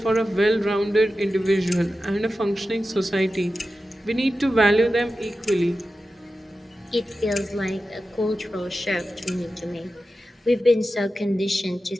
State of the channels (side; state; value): both; normal; correlation 0.93